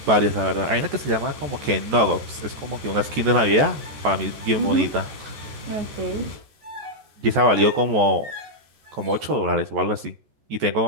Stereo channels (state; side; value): late; left; 14 ms